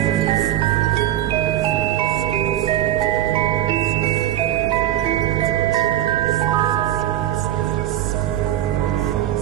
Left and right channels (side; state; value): left; quieter; 12.7 dB